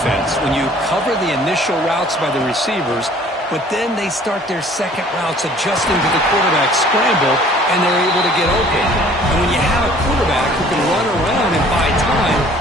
when you cover the initial routes by the receivers, but then they start their second routes adjusting to the quarterback scramble, and they're able to get open. And when you have a quarterback who can run around and buy time,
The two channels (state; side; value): normal; both; correlation 0.53